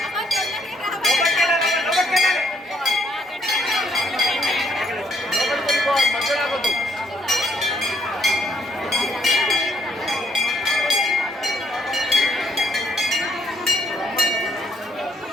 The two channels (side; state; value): both; normal; correlation 0.69